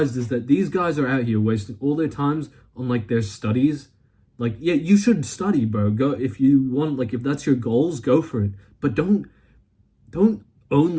is that these guys are out here wasting all their times on like their studies. Like, yeah, you should study, bro. Go if you want, like if that's your goals, go for it. But don't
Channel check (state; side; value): identical; both; correlation 1.00